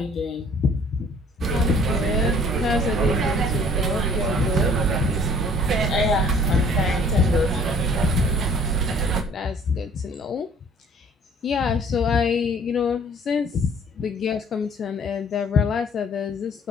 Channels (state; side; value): normal; both; correlation 0.54